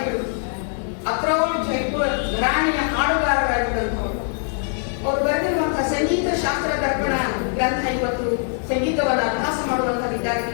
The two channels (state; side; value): silent; right; 59 dB below the other